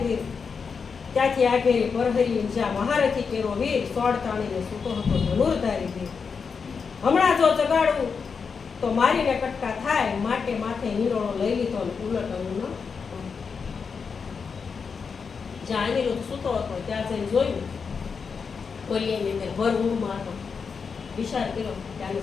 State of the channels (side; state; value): right; quieter; 5.6 dB